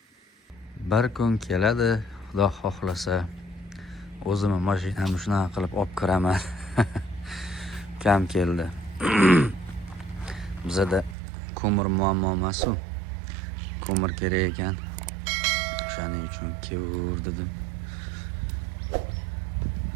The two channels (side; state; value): left; drops out; at 11.2 s